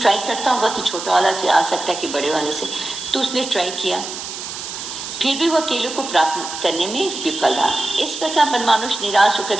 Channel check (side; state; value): right; noise; hiss, 8 dB below the sound